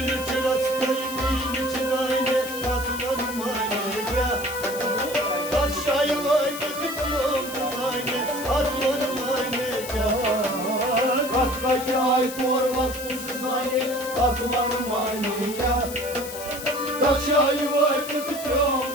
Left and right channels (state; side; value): noise; left; hiss, 11 dB below the sound